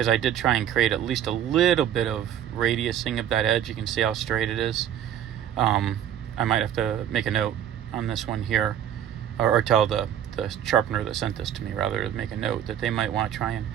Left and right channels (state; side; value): quieter; left; 10.2 dB